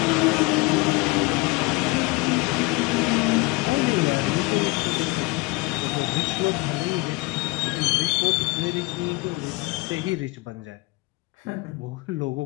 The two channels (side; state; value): right; quieter; 24.5 dB